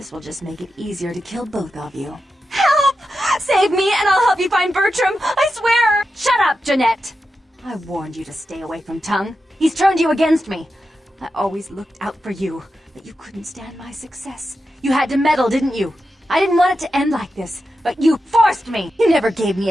will just make it easier to kill both of you. Help! Save me and I'll help you find Bertram! I swear! Shut up, Jeanette! I warned you to stay away from Tongue. He's turned you against me. I always looked out for you, but you couldn't stand my success. You had to meddle, didn't you? I didn't want it to end like this, but you forced me! You never gave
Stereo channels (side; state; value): both; normal; correlation 0.90